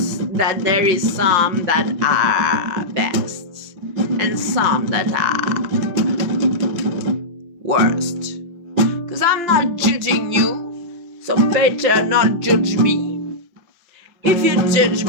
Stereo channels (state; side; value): late; left; 5.8 ms